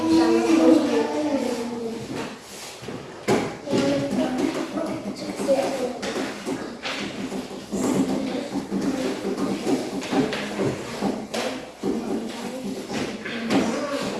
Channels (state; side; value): identical; both; correlation 1.00